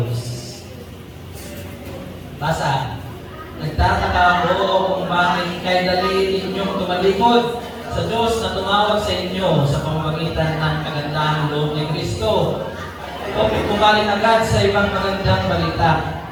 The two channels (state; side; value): identical; both; correlation 1.00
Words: Basa. Nagtataka ako kung bakit kay dali ninyong tumalikod sa Diyos na tumawag sa inyo sa pamamagitan ng kagandahang loob ni Kristo. O pumaling agad sa ibang magandang balita.